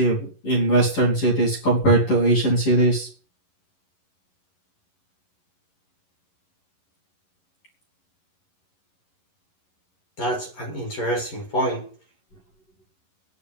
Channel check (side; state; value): right; late; 11 ms